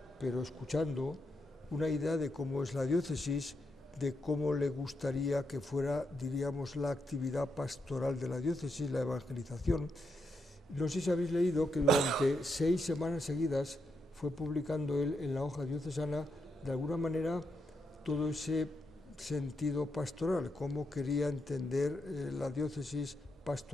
pero escuchando, una idea de cómo es la diócesis, de cómo le gustaría que fuera, diríamos, la actividad pastoral de la diócesis, la evangelización. No sé si habéis leído que durante 6 semanas seguidas fue publicando él en la hoja diocesana, de alguna manera, todo ese sentido pastoral, cómo quería entender la diócesis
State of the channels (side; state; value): both; normal; correlation 0.82